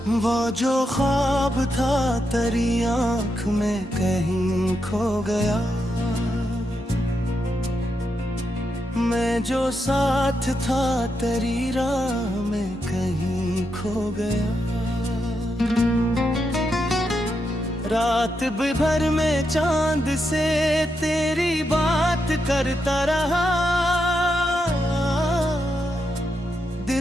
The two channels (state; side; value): normal; both; correlation 0.83